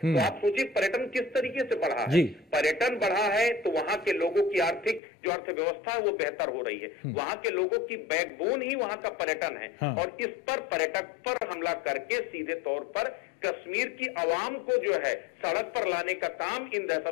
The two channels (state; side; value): drops out; right; at 5.0 s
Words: आप सोचिए पर्यटन किस तरीके से बढ़ा है। पर्यटन बढ़ा है तो वहां के लोगों की आर्थिक जो अर्थव्यवस्था है वो बेहतर हो रही है। वहां के लोगों की बैकबोन ही वहां का पर्यटन है। और इस पर पर्यटक पर हमला करके सीधे तौर पर कश्मीर की आवाम को जो है सड़क पर लाने का काम इन